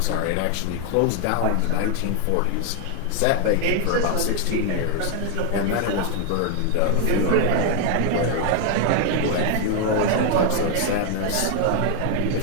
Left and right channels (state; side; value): different; both; correlation 0.00